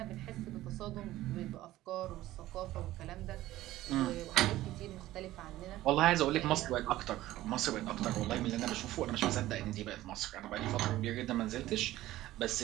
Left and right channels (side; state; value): left; quieter; 15.6 dB